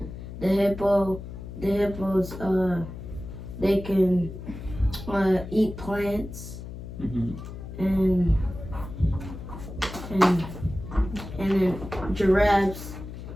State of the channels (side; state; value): left; noise; hum, 10 dB below the sound